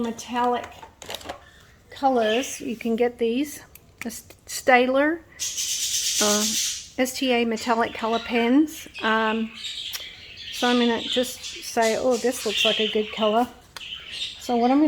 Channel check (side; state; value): both; identical; correlation 1.00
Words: colors. You can get these, the Staedtler STA metallic color pens. So I'm going to just say, oh, this looks like a good color. So what I'm